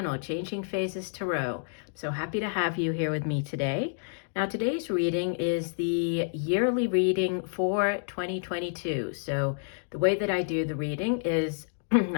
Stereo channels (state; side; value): silent; right; digital silence